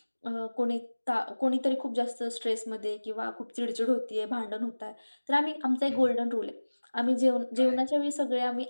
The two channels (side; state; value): both; inverted; correlation -1.00